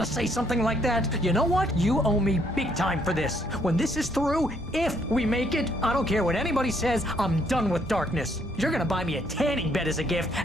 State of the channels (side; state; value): both; normal; correlation 0.68